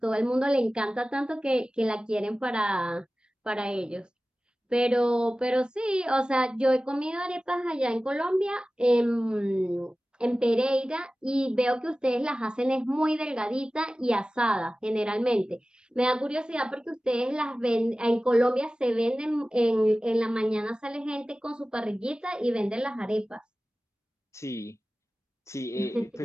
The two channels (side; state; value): both; normal; correlation 0.96